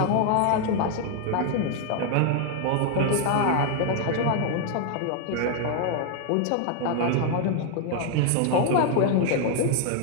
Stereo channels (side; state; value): both; different; correlation 0.00